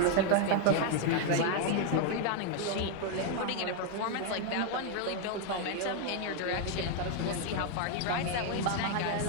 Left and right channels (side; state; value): both; different; correlation 0.00